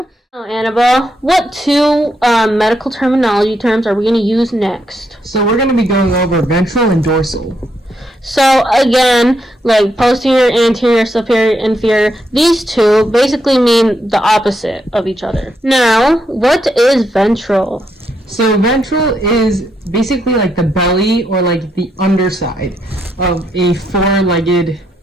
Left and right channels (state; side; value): normal; both; correlation 0.79